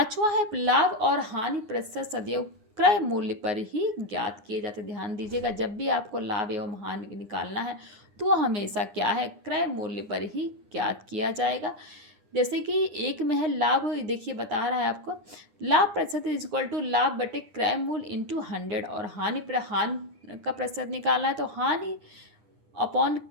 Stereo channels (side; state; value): left; late; 9.8 ms